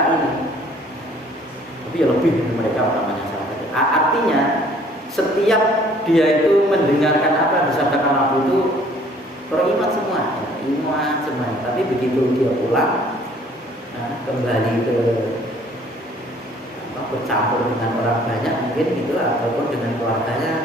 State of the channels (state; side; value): normal; both; correlation 0.57